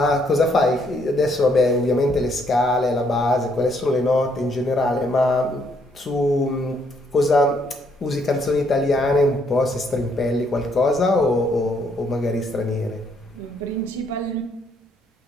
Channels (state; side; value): normal; both; correlation 0.70